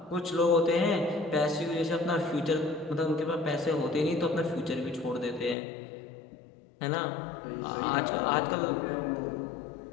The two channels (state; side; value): drops out; right; at 5.6 s